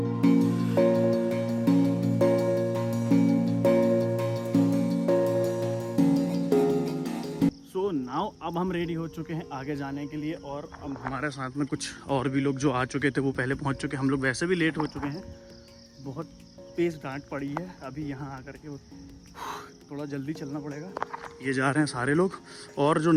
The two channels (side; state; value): both; identical; correlation 1.00